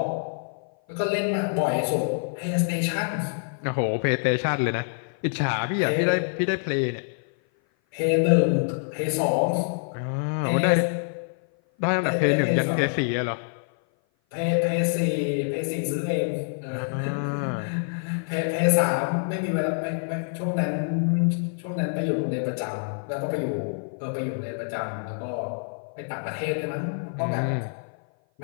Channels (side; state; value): right; silent; 56 dB below the other